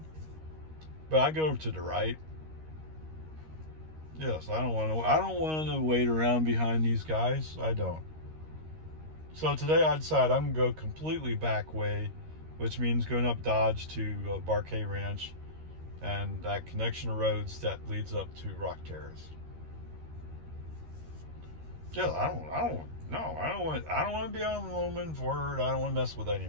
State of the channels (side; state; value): left; late; 13 ms